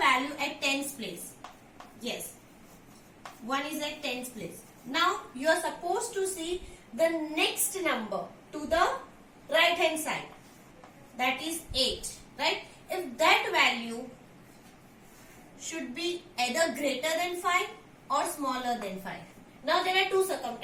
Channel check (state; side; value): identical; both; correlation 1.00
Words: at tens place. Yes, 1 is at tens place. Now, you are supposed to see the next number to the right hand side. That is 8, right? If that value should be either greater than 5 or smaller than 5. Now, there are two